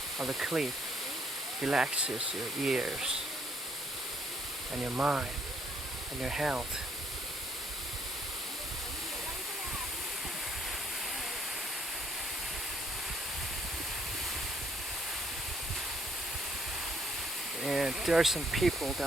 of the cliff relaxes your ears and your mind and your health. And there are some people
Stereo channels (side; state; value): both; normal; correlation 0.66